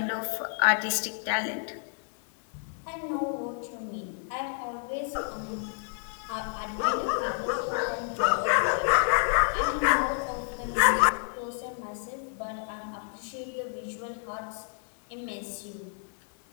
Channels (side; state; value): right; silent; 58 dB below the other